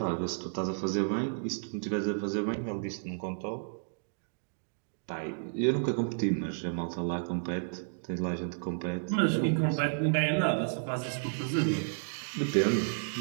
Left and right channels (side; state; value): left; silent; digital silence